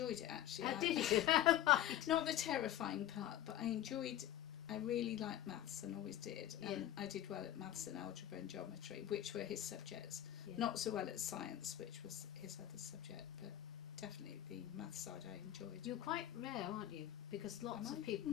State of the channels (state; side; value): quieter; right; 12.2 dB